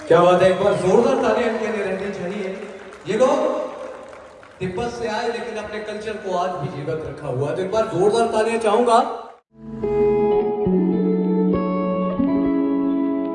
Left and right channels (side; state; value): both; identical; correlation 1.00